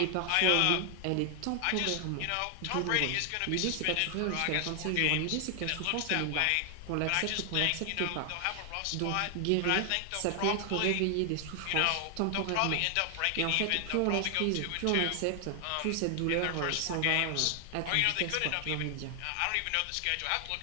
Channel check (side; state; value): both; different; correlation 0.00